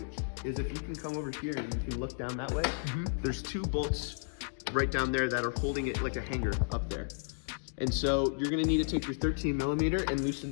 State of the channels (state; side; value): silent; right; digital silence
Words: is if you can come over here and you can look down that way, there's 2 bolts right down there that are holding it like a hanger up there. And so you're gonna need to take your 13mm and loosen